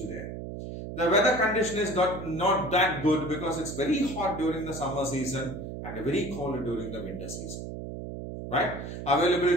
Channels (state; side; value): noise; right; hum, 8 dB below the sound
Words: there. The weather condition is not that good because it's very hot during the summer season and very cold during the winter season. Right?